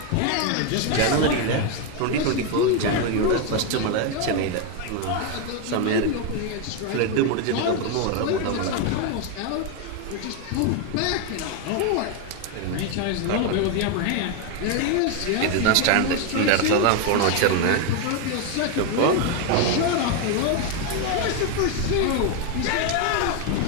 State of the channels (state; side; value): different; both; correlation 0.01